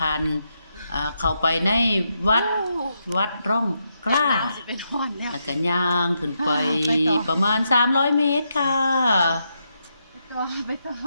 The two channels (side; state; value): both; inverted; correlation -0.82